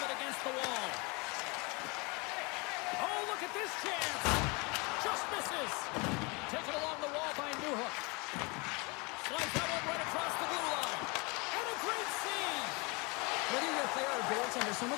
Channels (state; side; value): quieter; right; 28.5 dB